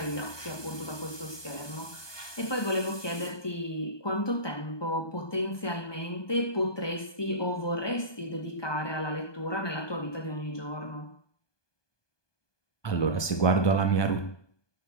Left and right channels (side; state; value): right; late; 1.2 ms